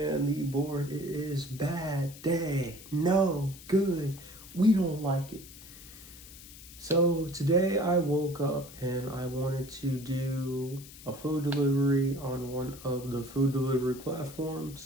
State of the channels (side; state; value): left; noise; hiss, 17 dB below the sound